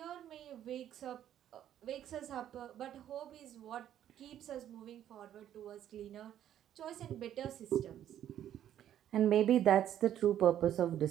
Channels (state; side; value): quieter; left; 11.0 dB